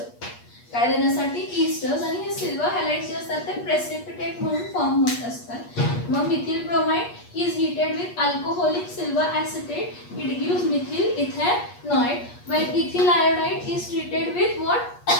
काय देण्यासाठी esters, आणि हे silver हॅलाइड्स जे असतात ते precipitate म्हणून form होत असतात. मग methyl bromide is heated with alcoholic silver acetate, it gives methyl ethanoid. When ethyl iodide is treated with what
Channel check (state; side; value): late; right; 8.4 ms